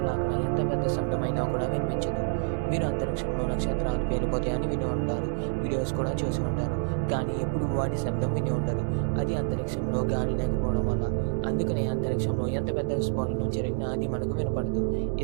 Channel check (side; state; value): left; silent; 59 dB below the other